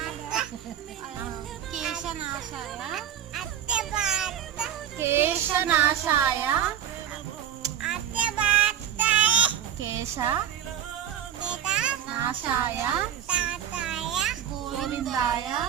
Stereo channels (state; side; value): quieter; left; 9.8 dB